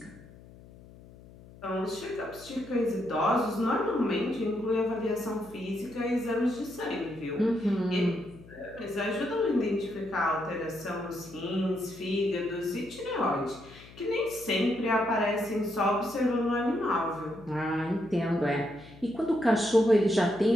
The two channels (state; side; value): noise; left; hum, 20 dB below the sound